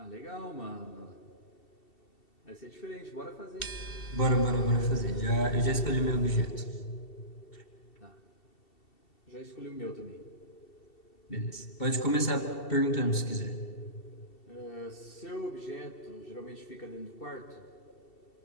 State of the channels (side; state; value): right; late; 2.7 ms